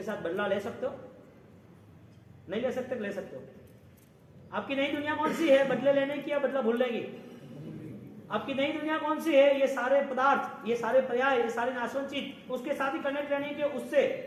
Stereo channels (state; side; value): identical; both; correlation 1.00